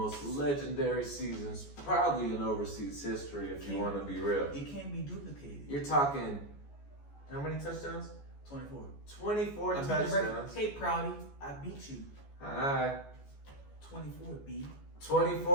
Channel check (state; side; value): late; right; 14 ms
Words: legendary seasons, probably in overseas history, if you want to be real. It can't be duplicated. You're talking, how many touchdowns? 24. 24 touchdowns. Hey, Proudy, I beat you. Hi. 24, B.